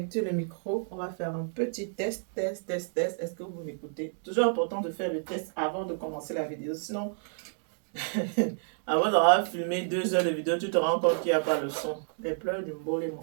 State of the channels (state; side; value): silent; left; digital silence